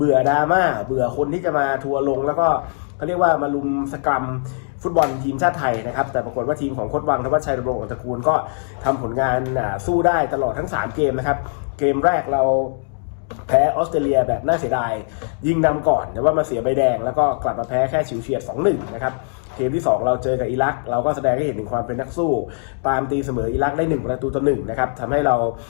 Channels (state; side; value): silent; right; digital silence